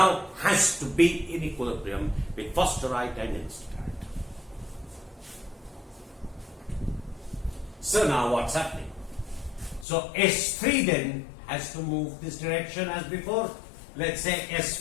has to be in equilibrium with phosphorite and enstatite. So now what's happening? So S3 then has to move this direction as before. Let's say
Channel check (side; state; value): right; drops out; at 9.9 s